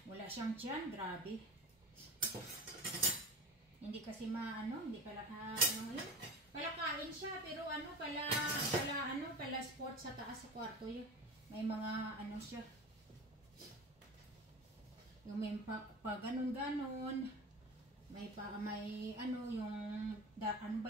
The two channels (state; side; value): normal; both; correlation 0.31